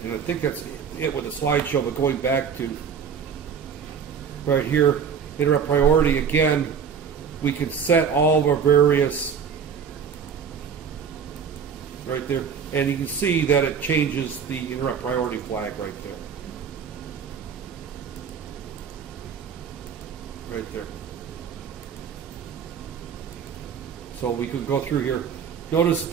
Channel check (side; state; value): left; quieter; 6.8 dB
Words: and I think that's it with the slideshow, but going back to right here, interrupt priority, again, we can set all of our various, right there, and you can see that it changes the interrupt priority flag right there. Right there. So we could go through here. Notice